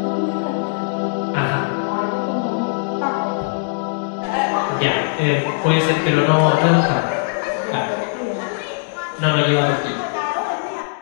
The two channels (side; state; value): right; silent; digital silence